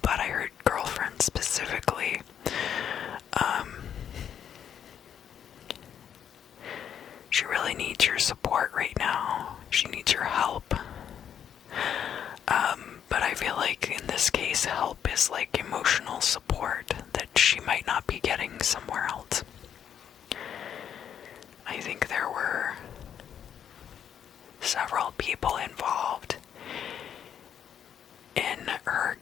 but I heard girlfriend specifically. She really needs your support right now. She needs your help. But I feel in this case, help is emotional support that she might not be getting somewhere else. I think there were several people involved in her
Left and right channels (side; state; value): right; quieter; 8.9 dB